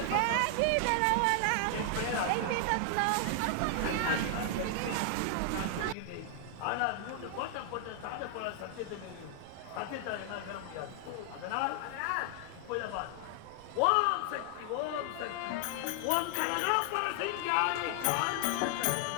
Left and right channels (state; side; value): different; both; correlation 0.00